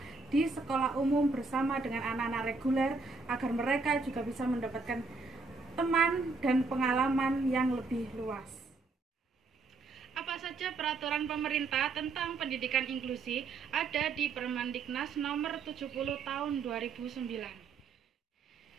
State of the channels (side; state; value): left; quieter; 4.1 dB